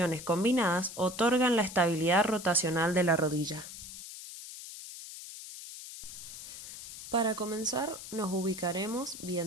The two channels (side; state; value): left; noise; hiss, 12 dB below the sound